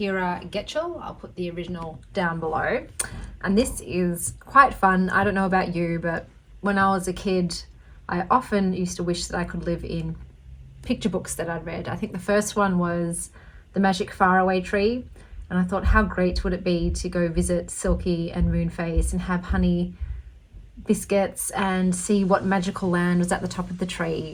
Getchell. I'll put the original down below. And this is quite fun. I don't know about you, but when I was a kid, I often used to wish that I could live in picture books that I'd read. I think the first one was The Magic Faraway Tree. And I thought, how great would it be to go visit Silky and Moonface and have honey biscuits and see what magical land was at the top of the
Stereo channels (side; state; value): both; identical; correlation 1.00